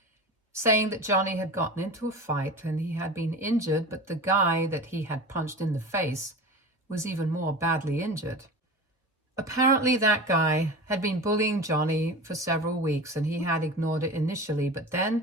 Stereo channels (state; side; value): normal; both; correlation 0.32